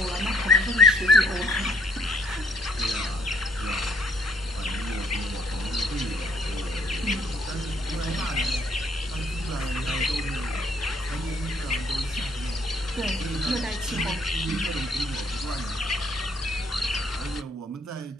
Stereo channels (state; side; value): normal; both; correlation 0.66